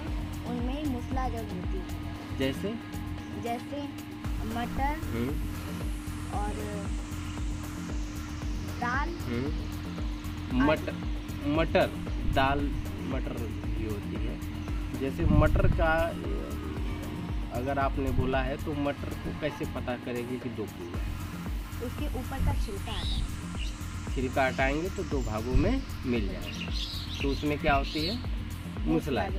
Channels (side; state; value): both; identical; correlation 1.00